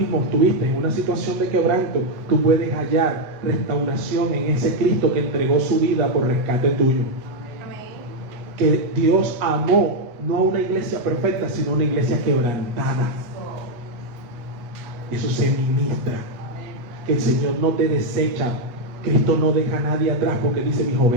estuviste en una situación de quebranto, tú puedes hallar restauración en ese Cristo que entregó su vida por rescate tuyo. Amén. Que Dios amó no a una iglesia perfecta, sino a una iglesia quebrantada. Eso se ministra. Que el Señor no te desecha. Cristo no deja a nadie atrás porque dice: mis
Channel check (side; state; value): left; late; 8.3 ms